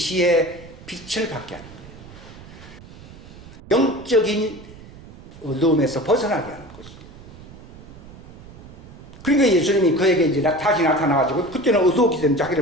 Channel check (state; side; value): noise; right; rumble, 18 dB below the sound